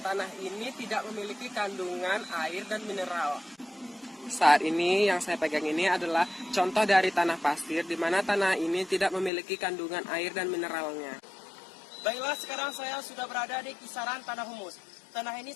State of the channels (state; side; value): drops out; right; at 9.3 s